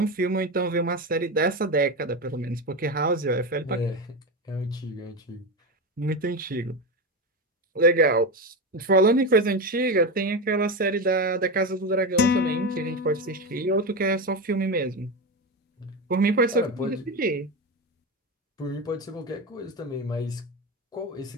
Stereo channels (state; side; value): normal; both; correlation 0.17